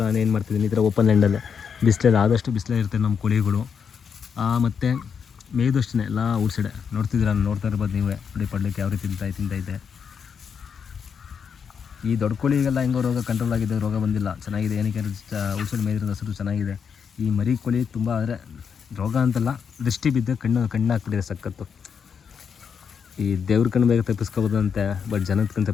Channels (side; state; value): right; quieter; 6.7 dB